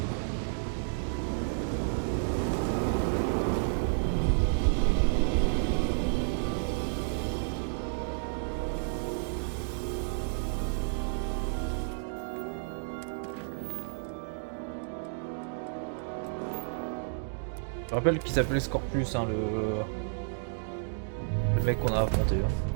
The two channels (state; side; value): silent; left; digital silence